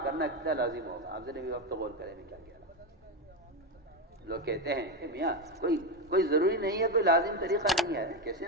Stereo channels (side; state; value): both; normal; correlation 0.12